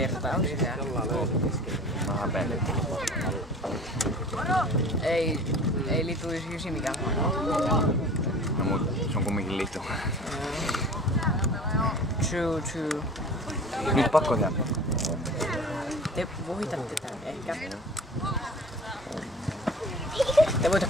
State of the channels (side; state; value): both; normal; correlation 0.41